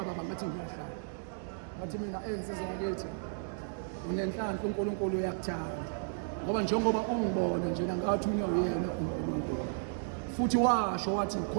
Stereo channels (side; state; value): left; silent; digital silence